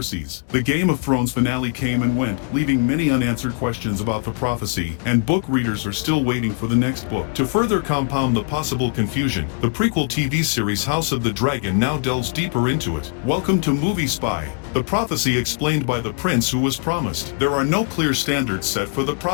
The Game of Thrones finale came and went, leaving many unanswered questions about the prophecy, and book readers are still waiting for the next book. To further compound the possible confusion, the prequel TV series House of the Dragon now delves deeper into it. Welcome to Movie Spy. The prophecy explained by the prince who was promised. There are no clear standards set for the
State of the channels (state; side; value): quieter; right; 36.3 dB